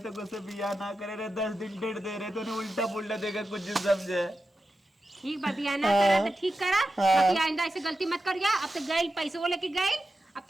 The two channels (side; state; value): both; normal; correlation 0.91